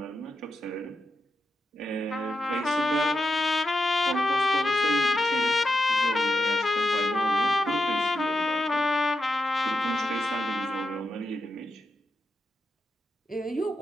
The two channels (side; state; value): both; normal; correlation 0.86